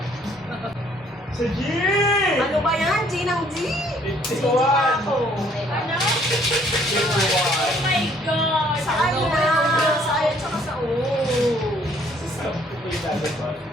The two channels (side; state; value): both; normal; correlation 0.62